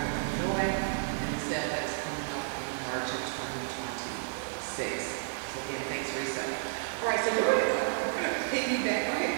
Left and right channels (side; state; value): left; silent; 57 dB below the other